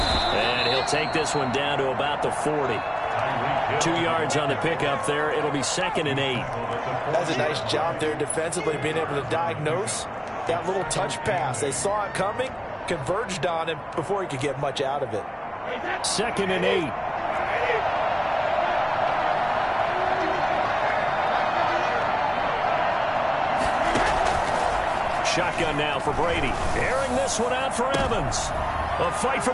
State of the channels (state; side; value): identical; both; correlation 1.00